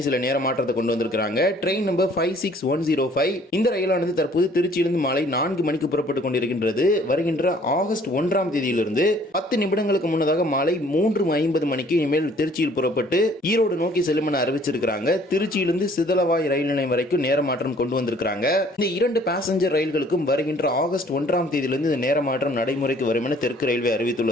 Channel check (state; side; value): normal; both; correlation 0.57